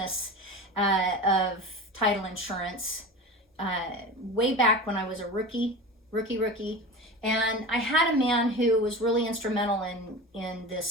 of title insurance way back when I was a rookie. And I had a man who was really instrumental in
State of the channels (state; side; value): normal; both; correlation 0.30